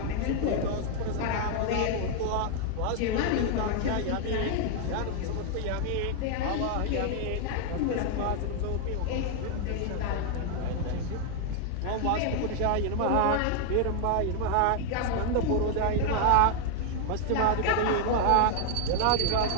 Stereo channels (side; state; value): both; different; correlation 0.00